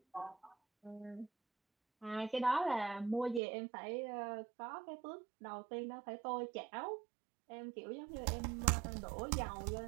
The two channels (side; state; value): left; drops out; at 3.4 s